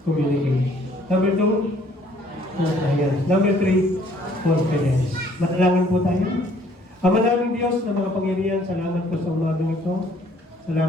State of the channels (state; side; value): normal; both; correlation 0.60